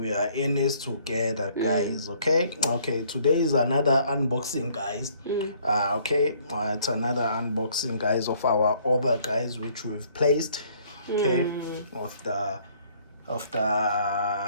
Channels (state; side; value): inverted; both; correlation -0.62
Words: are in this together, guys. Okay, today is another unboxing, guys. It's another unboxing, guys, of our order, guys, which we've placed, of